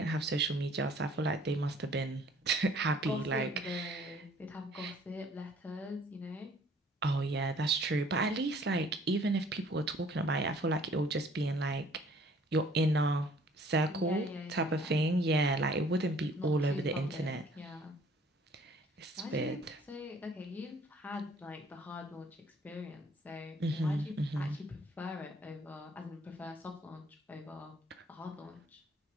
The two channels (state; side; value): normal; both; correlation 0.56